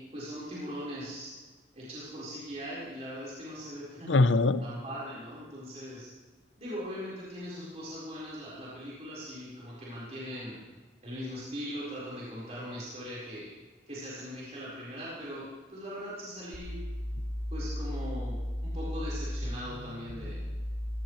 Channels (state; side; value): normal; both; correlation 0.63